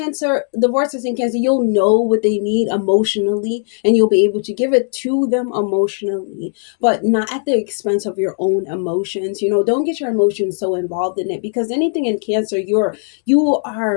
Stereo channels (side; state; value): right; silent; 66 dB below the other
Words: the Vortex in Cancer, you'll know what they need emotionally and you'll be able to give it to them emotionally, but not at the expense of your own emotions. Don't get your emotions so involved in it, because anything in Cancer, you